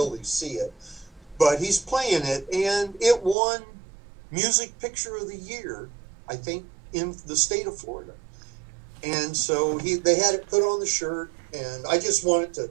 see it. But he's playing it, and it won Music Picture of the Year, I think, in the state of Florida. And so they had it put on the shirt, and I just wanted to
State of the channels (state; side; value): drops out; left; at 3.4 s